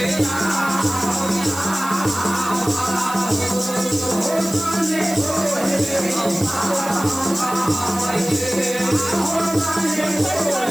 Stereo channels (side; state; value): right; noise; hiss, 12 dB below the sound